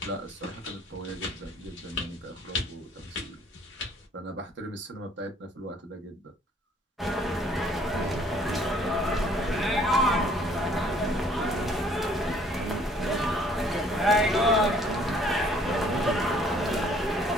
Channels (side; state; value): both; normal; correlation 0.59